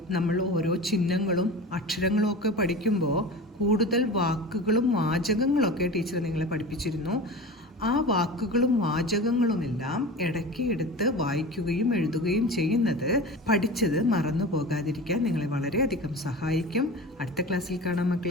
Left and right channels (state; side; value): normal; both; correlation 0.33